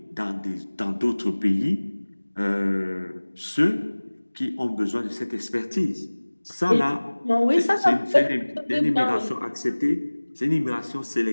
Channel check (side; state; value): both; inverted; correlation -1.00